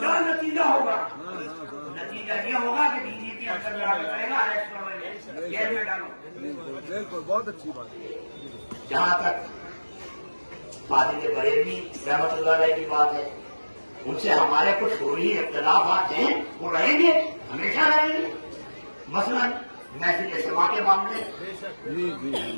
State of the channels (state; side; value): inverted; both; correlation -1.00